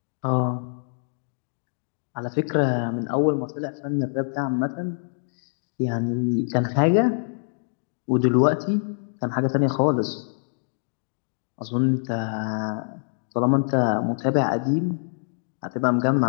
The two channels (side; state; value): right; silent; digital silence